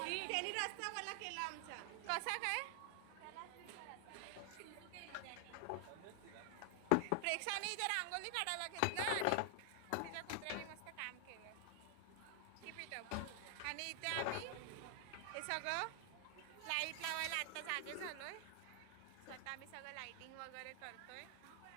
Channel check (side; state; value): both; different; correlation 0.00